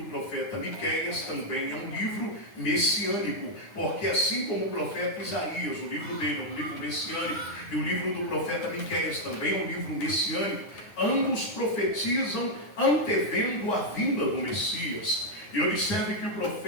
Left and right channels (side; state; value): right; late; 9.6 ms